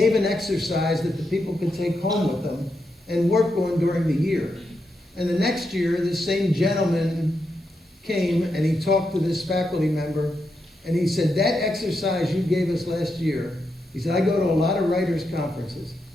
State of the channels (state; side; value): normal; both; correlation 0.84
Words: an exercise that the people could take home with them and work on during the year. And the next year, this same gentleman came and he talked to this faculty member, and he said, that exercise you gave us last year, he said, I go to a lot of writers' conferences.